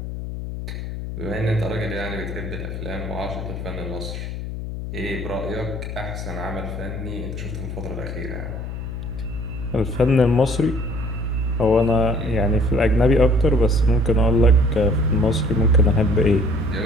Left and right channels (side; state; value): left; noise; hum, 7 dB below the sound